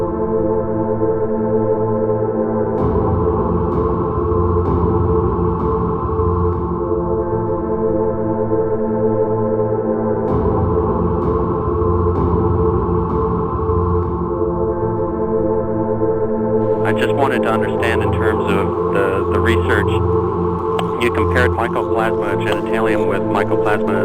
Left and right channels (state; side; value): identical; both; correlation 1.00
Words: just wanted to understand in terms of the research, you compared Mycoplasma genitalium with